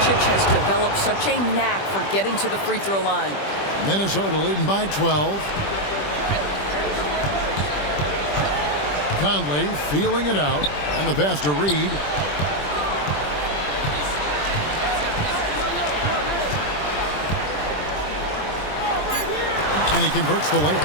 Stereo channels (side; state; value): right; late; 20 ms